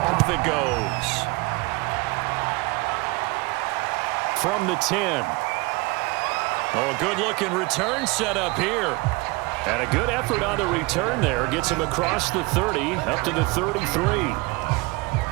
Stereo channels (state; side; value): quieter; left; 24.6 dB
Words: it goes. From the 10. Oh, a good-looking return set up here. And a good effort on the return there. Gets him across the 30, up to the 33.